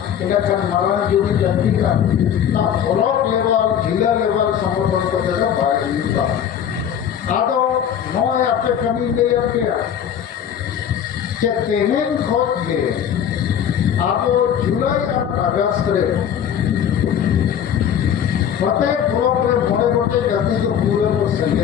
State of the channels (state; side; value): quieter; right; 9.0 dB